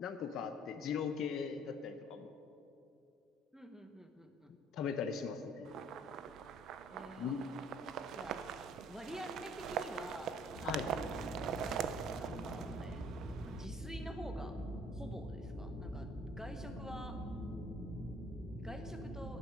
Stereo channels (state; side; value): normal; both; correlation 0.57